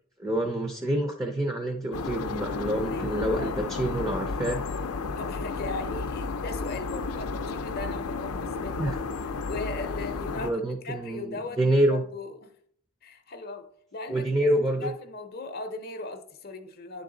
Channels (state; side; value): normal; both; correlation 0.56